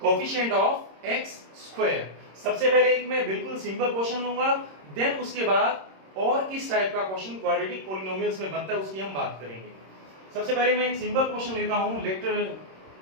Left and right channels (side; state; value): left; late; 26 ms